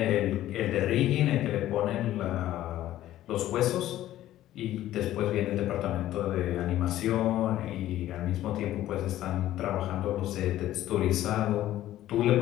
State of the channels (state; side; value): quieter; right; 13.7 dB